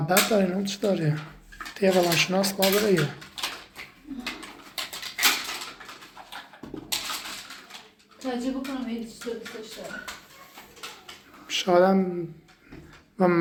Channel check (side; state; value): both; identical; correlation 1.00